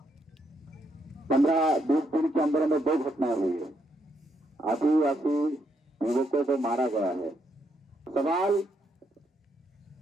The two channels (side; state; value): both; normal; correlation 0.76